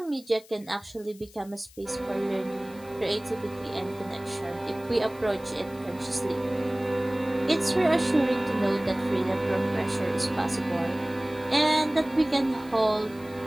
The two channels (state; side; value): noise; left; hiss, 24 dB below the sound